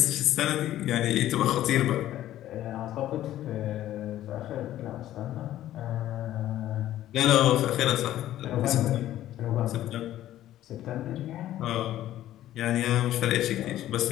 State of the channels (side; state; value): right; quieter; 13.3 dB